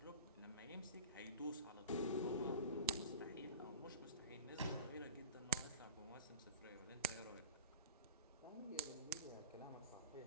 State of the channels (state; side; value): inverted; both; correlation -0.38